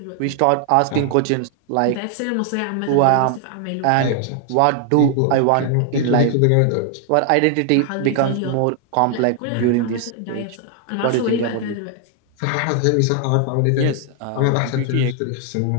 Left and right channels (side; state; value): both; different; correlation 0.00